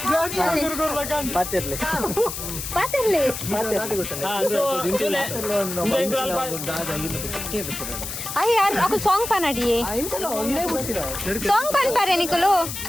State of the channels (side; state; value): left; noise; hiss, 7 dB below the sound